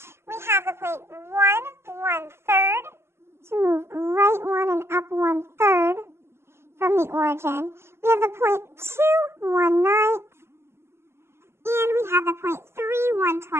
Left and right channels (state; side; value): late; left; 0.12 ms